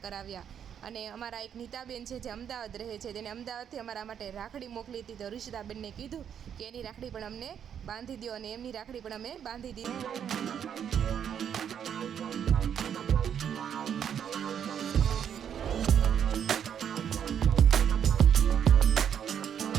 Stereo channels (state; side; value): quieter; left; 8.6 dB